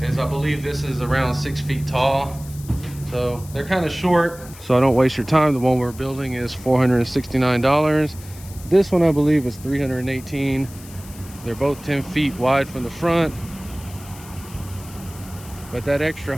is I believe this is around 6 feet tall. So they're kind of short, so I don't waste your time. The one we're building is $469. This one I believe is $318. They're both 10 feet wide from the front, but that extra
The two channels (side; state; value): left; noise; hiss, 19 dB below the sound